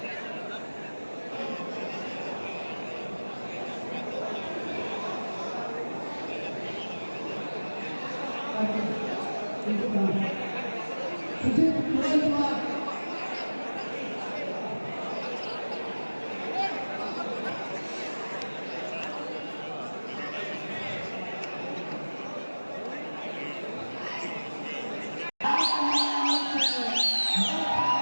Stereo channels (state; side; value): inverted; both; correlation -1.00